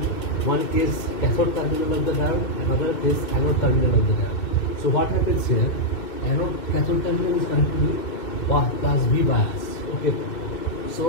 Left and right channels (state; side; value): late; right; 2.6 ms